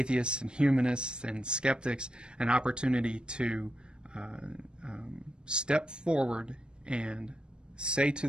and humanists and skeptics an opportunity to step forward and say to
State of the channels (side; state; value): left; late; 0.052 ms